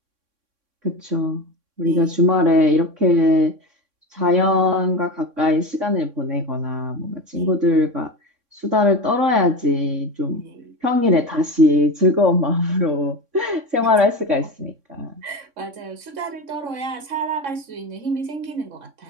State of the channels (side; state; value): left; late; 3.6 ms